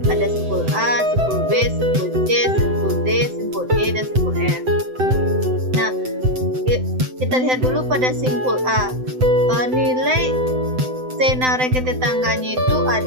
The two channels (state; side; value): late; left; 7.8 ms